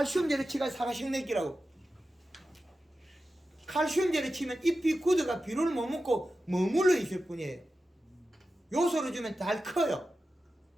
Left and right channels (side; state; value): both; normal; correlation 0.92